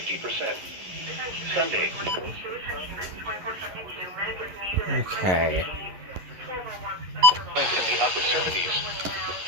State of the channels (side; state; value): left; late; 11 ms